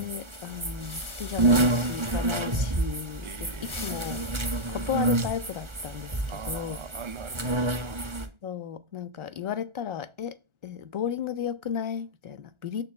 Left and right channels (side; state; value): left; late; 1.4 ms